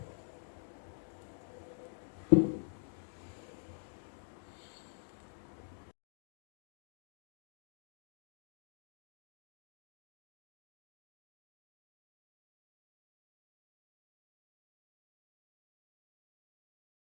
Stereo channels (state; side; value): silent; right; digital silence